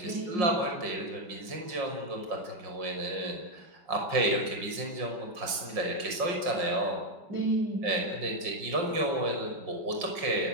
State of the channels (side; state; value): left; late; 5.6 ms